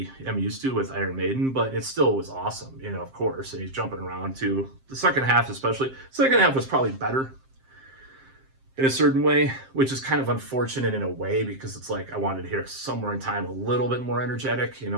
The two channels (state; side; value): late; left; 7.6 ms